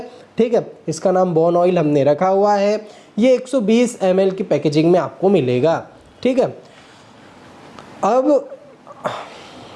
ठीक है। इसका नाम बोन ऑयल हमने रखा हुआ है। ये 120 ml की पैकेजिंग में आपको मिलेगा, ठीक है। अब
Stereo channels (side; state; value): both; identical; correlation 1.00